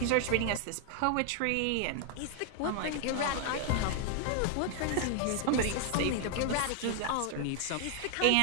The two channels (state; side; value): different; both; correlation 0.00